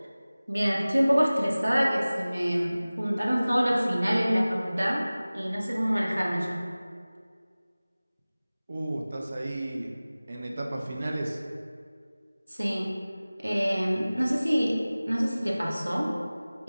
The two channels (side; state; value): both; inverted; correlation -0.98